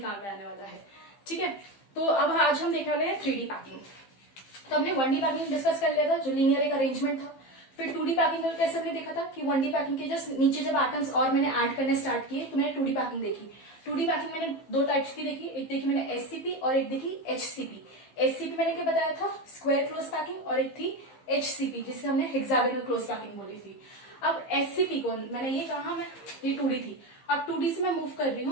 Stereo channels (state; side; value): late; right; 15 ms